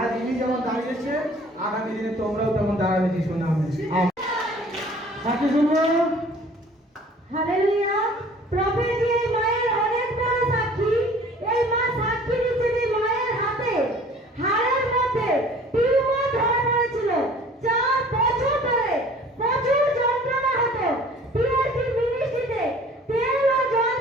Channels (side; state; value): both; normal; correlation 0.50